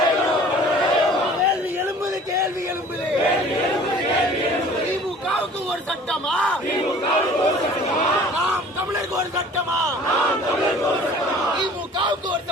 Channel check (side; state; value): both; normal; correlation 0.48